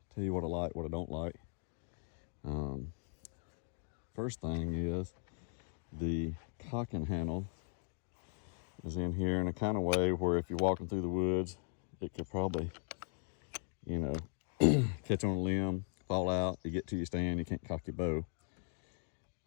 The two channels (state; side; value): silent; right; 52 dB below the other